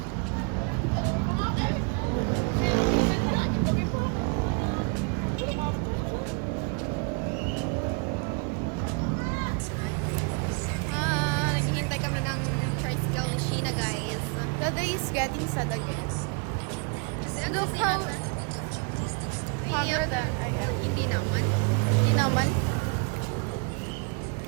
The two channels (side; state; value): left; quieter; 34.5 dB